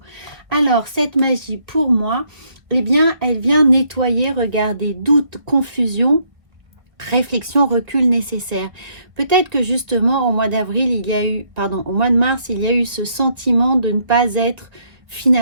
Alors, cette magie, pour moi, elle vient nettoyer, regardez, doute, confusion, réflexion, recul nécessaire. Peut-être que justement, au mois d'avril, au mois de mars, il y a eu ce sentiment de ne pas être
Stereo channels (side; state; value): left; late; 1.4 ms